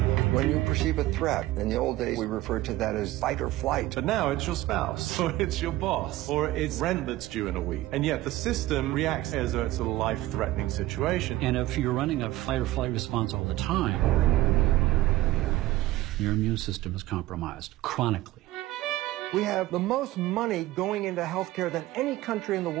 When you perceive a threat, in the old days we referred to that as fight or flight. But now it's your spouse, or it's your boss, or it's rent that's due in a week. And yet the system reacts as though it's a life-threatening situation. And if you're running a fight or flight response all the time, your immune system is compromised chronically. We have the most money going into healthcare than any country in the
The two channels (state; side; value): quieter; left; 16.6 dB